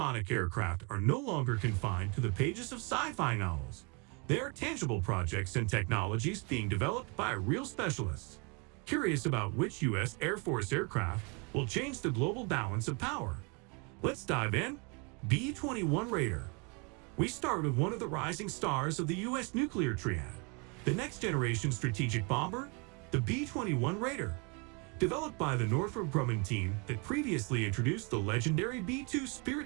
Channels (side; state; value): left; quieter; 32.2 dB